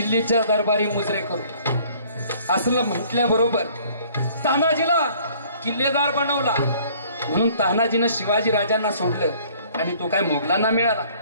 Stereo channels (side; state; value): both; inverted; correlation -0.56